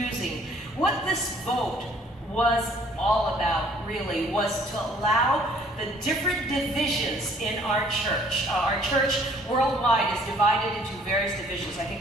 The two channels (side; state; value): both; normal; correlation 0.58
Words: What this vote was all about really was to allow the different divisions in our church. Our church worldwide is divided into various divisions. I think